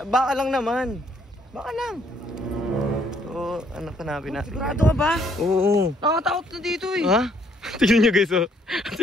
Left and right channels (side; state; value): both; normal; correlation 0.67